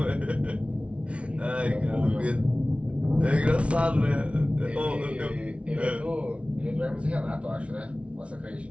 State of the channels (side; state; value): left; late; 0.061 ms